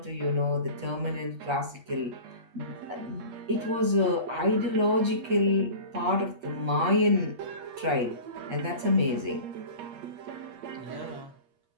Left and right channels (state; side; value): late; left; 8.4 ms